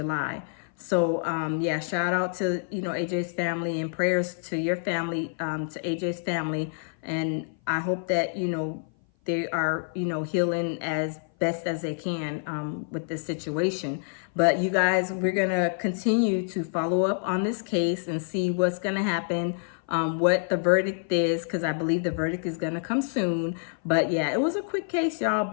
So, yeah, shout out to, you know, AJ's family, and prayers to your family, to AJ's family. And I hope that, you know, they are, you know, healing as best as they can with this situation. But you guys, we're going to continue to follow up on this case and see what's going to happen, what the verdict is, because I believe the verdict is going to come soon. But yeah, it was a quick case, y'all,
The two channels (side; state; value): right; silent; 57 dB below the other